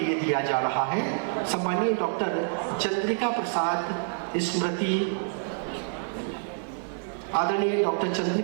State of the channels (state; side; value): silent; left; digital silence